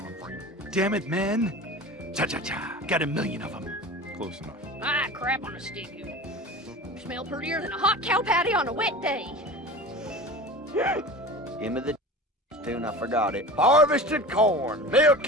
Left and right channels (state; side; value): normal; both; correlation 0.35